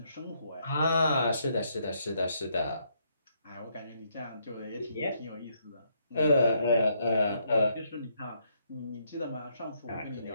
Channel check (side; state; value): both; inverted; correlation -0.74